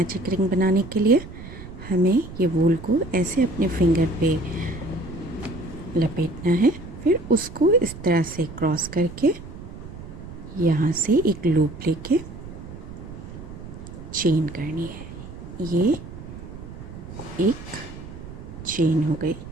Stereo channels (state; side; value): noise; right; rumble, 13 dB below the sound